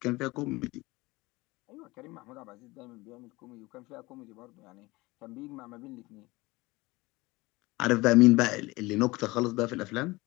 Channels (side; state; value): right; quieter; 21.8 dB